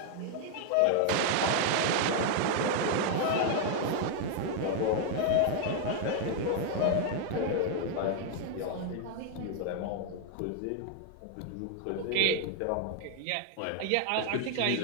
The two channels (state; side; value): different; both; correlation 0.00